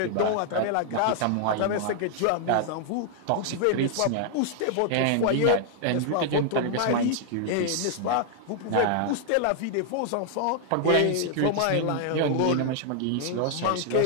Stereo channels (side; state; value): both; different; correlation 0.00